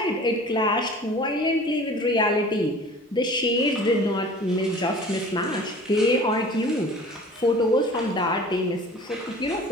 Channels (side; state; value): both; normal; correlation 0.44